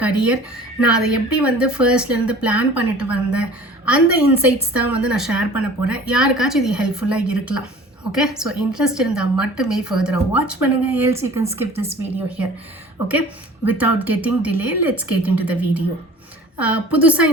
career, நான் அதை எப்படி வந்து ஃபர்ஸ்ட்லேருந்து பிளான் பண்ணிட்டு வந்தேன், அந்த இன்சைட்ஸ் தான் வந்து நான் ஷேர் பண்ண போகிறேன். யாருக்காச்சும் இது ஹெல்ப்ஃபுல்லாக இருக்கலாம். ஓகே, ஸோ இன்ட்ரெஸ்ட் இருந்தால் மட்டுமே ஃபர்தராக வாட்ச் பண்ணுங்கள். Else you can skip this video here. Okay, without getting delay let's get in to the video. புதுசாக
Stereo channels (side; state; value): both; normal; correlation 0.45